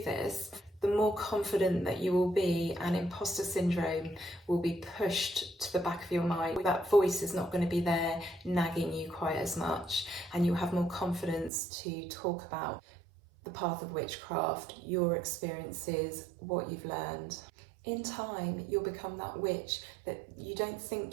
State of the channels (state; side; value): drops out; left; at 11.5 s